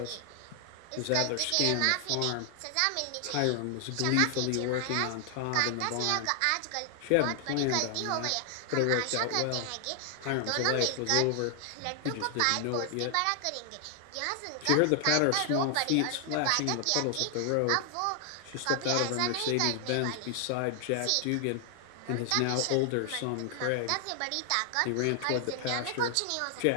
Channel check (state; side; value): different; both; correlation 0.00